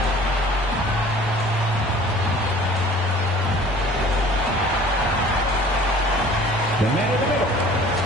The man in the middle,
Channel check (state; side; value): normal; both; correlation 0.48